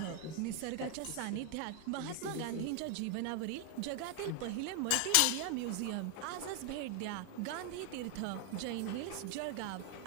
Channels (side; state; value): both; different; correlation 0.00